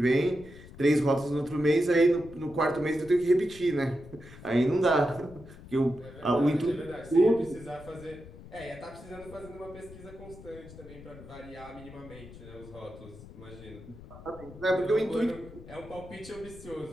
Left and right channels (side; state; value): left; noise; rumble, 17 dB below the sound